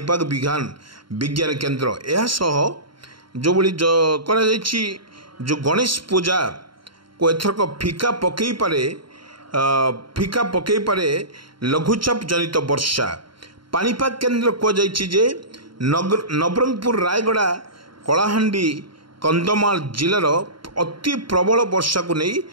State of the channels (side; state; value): left; late; 0.73 ms